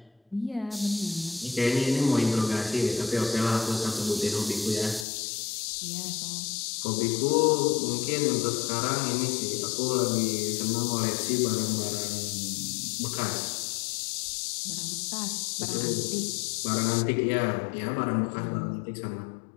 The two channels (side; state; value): right; drops out; at 5.1 s